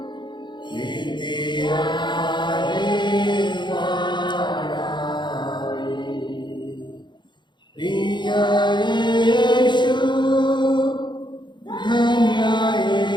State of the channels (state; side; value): late; right; 0.22 ms